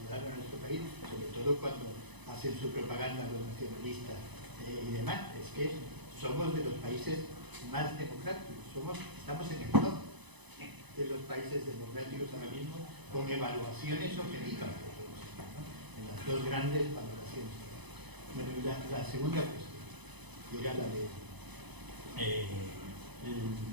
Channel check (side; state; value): left; late; 1.0 ms